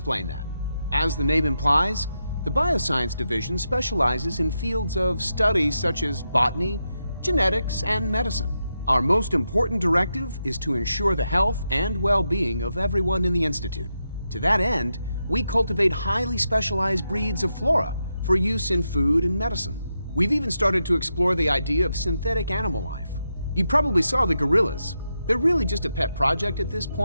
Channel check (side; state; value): both; inverted; correlation -0.86